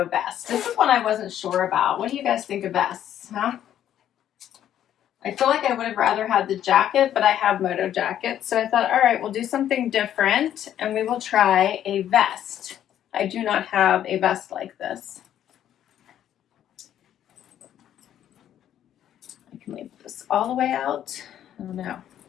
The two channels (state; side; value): quieter; right; 10.8 dB